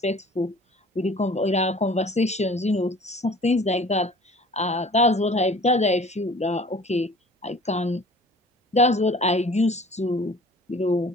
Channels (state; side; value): normal; both; correlation 0.47